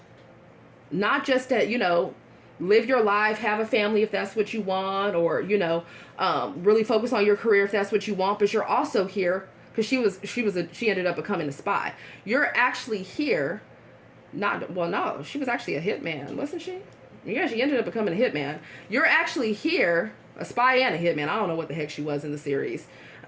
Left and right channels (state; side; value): identical; both; correlation 1.00